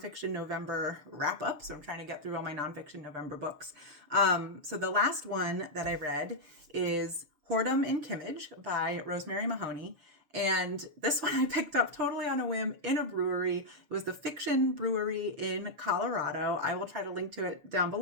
November wrap-up, so I'm trying to get through all my nonfiction November books. So the last one that I read is Whoredom in Kimmage by Rosemary Mahoney. And this one I picked up totally on a whim in a brewery. It was the Fiction Brewery in Colorado. I will try to link to it down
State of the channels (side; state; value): left; late; 6.7 ms